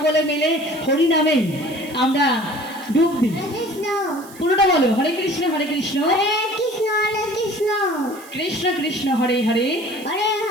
মিলে হরিনামে আমরা ডুব দিই। পুরোটা বলো, হরে কৃষ্ণ কৃষ্ণ কৃষ্ণ কৃষ্ণ হরে হরে,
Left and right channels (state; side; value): noise; right; hiss, 20 dB below the sound